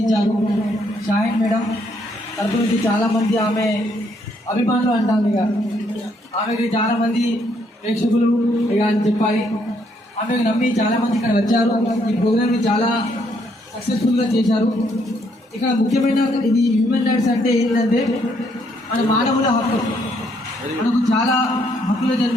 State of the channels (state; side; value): normal; both; correlation 0.71